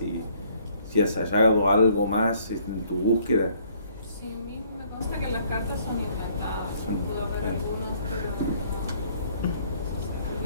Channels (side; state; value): both; inverted; correlation -0.62